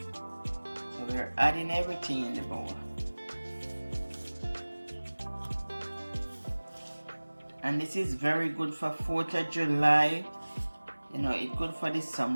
we're adding everything in the bowl. And this is very good for 4th of July. You know, it's good for the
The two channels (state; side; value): inverted; both; correlation -1.00